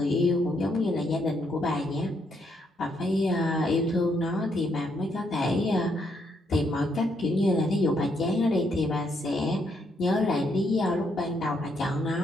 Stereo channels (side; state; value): both; normal; correlation 0.75